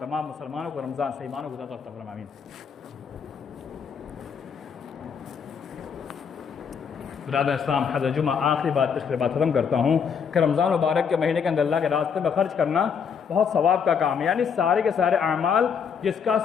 تمام مسلمانوں کو رمضان سے ایمانوں کو عطا فرمائے، آمین۔ برادر اسلام، حضرت جمعہ آخری بات پچھلے بات ختم کرتا ہوں کہ رمضان مبارک کے مہینے کے اندر اللہ کے راستے میں خرچ کرنا بہت ثواب کا کام ہے، یعنی سارے کے سارے اعمال جس کا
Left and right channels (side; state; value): right; quieter; 6.7 dB